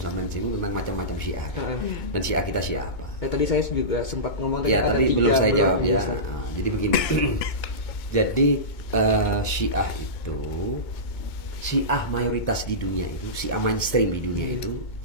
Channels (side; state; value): right; late; 2.2 ms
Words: sampai singgung tentang macam-macam Syiah. Dan Syiah kita Syiah apa? Tadi saya juga sempat ngomong ya, ada tadi 3 belum saya jawab ya. Ustaz. Jadi begini. Jadi Syiah itu Syiah mayoritas di dunia itu, Syiah mainstream di dunia itu.